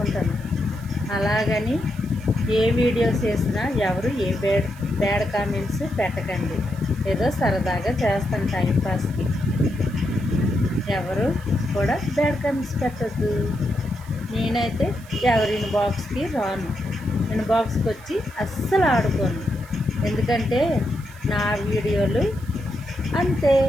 అలాగని ఏ వీడియోస్ చేసినా ఎవరు ఏ బ్యాడ్ కామెంట్స్ పెట్టకండి. ఏదో సరదాగా చేస్తాను టైంపాస్కి. ఎవరు కూడా బ్యాడ్ కామెంట్స్ పెట్టద్దు. నేనైతే ఎవరి ఇన్బాక్స్కి రాను, ఇన్బాక్స్కి వచ్చి అస్సలు ఆడుకోను. ఎందుకంటే నా వీడియోలు అంతే.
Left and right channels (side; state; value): right; noise; hiss, 24 dB below the sound